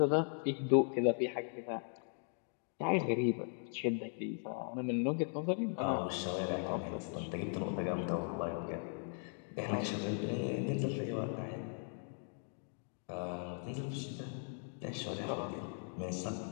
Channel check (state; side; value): silent; right; 52 dB below the other